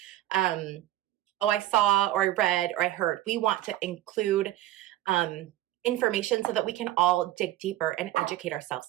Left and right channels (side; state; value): left; quieter; 14.5 dB